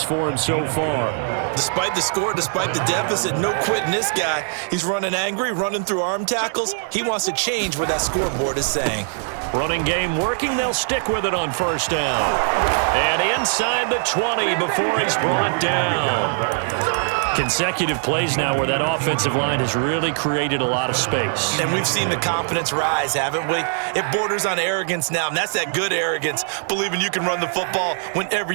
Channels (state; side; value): silent; left; digital silence